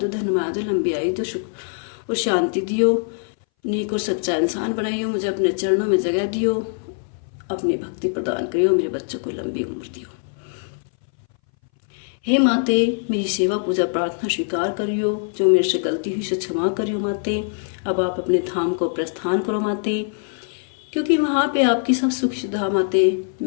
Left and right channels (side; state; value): right; silent; 61 dB below the other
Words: धनमाया दो, लंबी आयु दो, सुख और शांति दियो, नेक और सच्चा इंसान बनाइयो, मुझे अपने चरणों में जगह दियो, अपनी भक्ति प्रदान करियो, मेरे बच्चों को लंबी उम्र दियो। हे माते, मेरी सेवा पूजा प्रार्थना स्वीकार करियो, जो मेरे से गलती हुई से क्षमा करियो माते। अब आप अपने धाम को प्रस्थान करो माते, क्योंकि वहाँ पे आपकी सब सुख सुविधा माते,